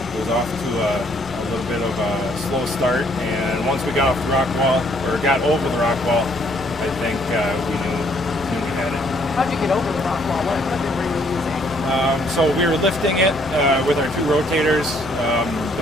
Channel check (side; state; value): both; normal; correlation 0.65